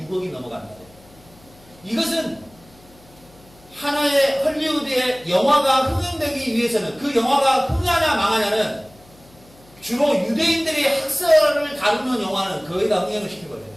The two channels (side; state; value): left; noise; hum, 26 dB below the sound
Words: 6억이 넘어갑니다. 이것은 하나의 헐리우드의 영화가 흥행되기 위해서는, 그 영화가 흥하냐 망하냐는 주로 유대인들이 학살을 다루는 영화는 거의 다 흥행을 시켜버려요.